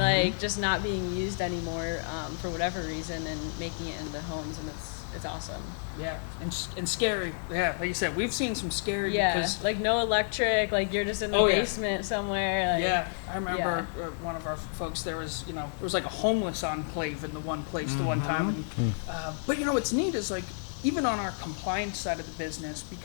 just not being used anymore for whatever reason and making it into homes, and it's awesome. Yeah, and scary. Yeah, like you said, we've seen some scary. Yeah, because, like no electric, like you're just in the basement somewhere. Like, yeah, I remember one of our folks. There was like a homeless enclave in the one place the one time. And, but what's neat is like even on our compliance side of the business,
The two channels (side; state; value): right; silent; digital silence